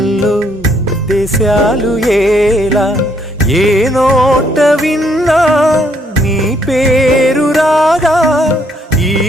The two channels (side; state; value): both; normal; correlation 0.69